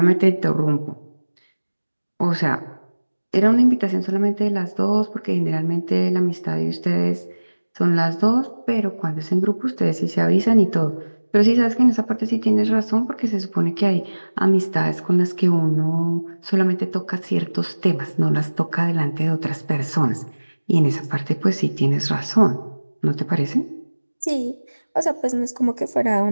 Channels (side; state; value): both; inverted; correlation -1.00